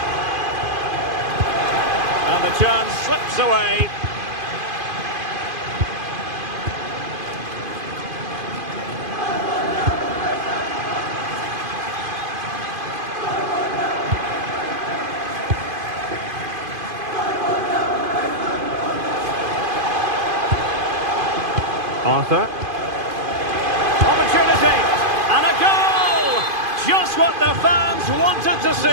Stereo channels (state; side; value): late; left; 2.5 ms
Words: And the chance slips away. Arthur. Opportunity. And a goal! Just what the fans wanted to